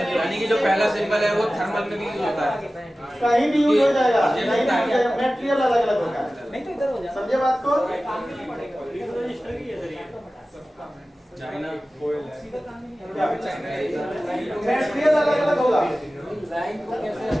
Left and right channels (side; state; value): both; normal; correlation 0.96